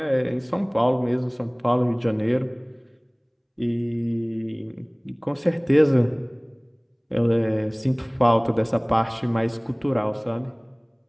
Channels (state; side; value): identical; both; correlation 1.00